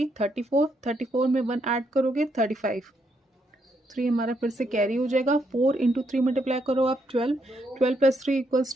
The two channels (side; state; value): both; normal; correlation 0.76